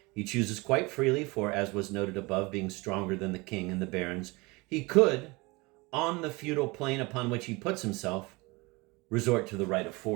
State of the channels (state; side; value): quieter; left; 24.9 dB